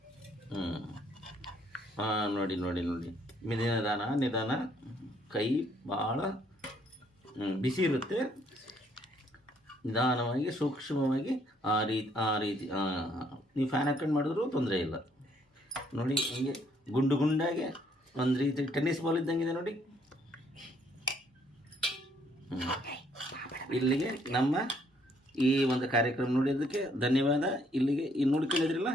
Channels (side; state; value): both; normal; correlation 0.68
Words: ನೋಡಿ ನಿಧಾನ. ಕೈ ಭಾಳ ಬಿಸಿ ಇರುತ್ತೆ. ನಿಧಾನವಾಗಿ ಸೂಕ್ಷ್ಮವಾಗಿ ಆ ರೀತಿ ನೀವು ಫ್ಯಾನ್ ಹಾಕೊಂಡು ಮಾಡಿದ್ರೂ ತೊಂದರೆ ಇಲ್ಲ ನೋಡಿ. ಹಿಂಗೆ ಗುಂಡಾಗೆ ಒಂದು ರೀತಿ ಟೆನ್ನಿಸ್ ಬಾಲ್ ಇದ್ದಂಗಿದೆ ನೋಡಿ. ಇಲ್ಲಿಗೆ ನಮ್ಮ ಈ ಒಂದು ಕಾರ್ಯಕ್ರಮ ನೋಡಿದ್ದಕ್ಕೆ ಧನ್ಯವಾದ. ಇಲ್ಲಿಗೆ ನೋಡ್ಕೊಂಡಿದ್ರಲ್ಲ